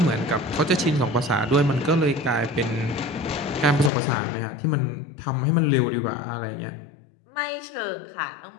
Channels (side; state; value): right; drops out; at 3.9 s